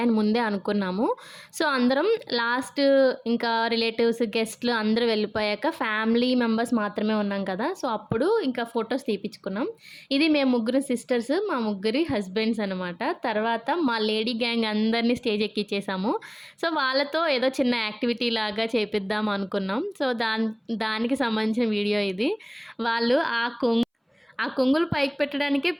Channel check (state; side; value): identical; both; correlation 1.00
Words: ముందే అనుకున్నాము. సో, అందరం లాస్ట్ ఇంకా రిలేటివ్స్, గెస్ట్‌లు అందరూ వెళ్ళిపోయాక ఫ్యామిలీ మెంబర్స్ మాత్రమే ఉన్నాం కదా! సో, అప్పుడు ఇంకా ఫోటోస్ తీపిచ్చుకున్నాం. ఇది మేము ముగ్గురు సిస్టర్స్, మా ముగ్గురి హస్బెండ్స్ అనమాట. తర్వాత మా లేడీ గ్యాంగ్ అందరిని స్టేజ్ ఎక్కిచ్చేసాము. సో, వాళ్ళతో ఏదో చిన్న యాక్టివిటీ లాగా చేపిద్దాం అనుకున్నాం. సో, దానికి సంబంధించిన వీడియో ఇది. వాళ్ళు ఆ కొంగులు పైకి పెట్టడానికే